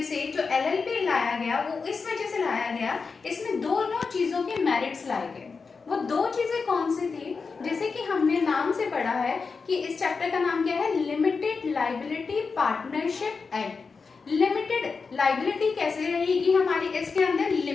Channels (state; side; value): quieter; right; 4.9 dB